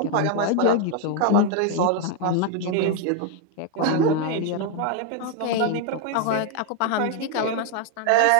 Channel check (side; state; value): both; different; correlation 0.00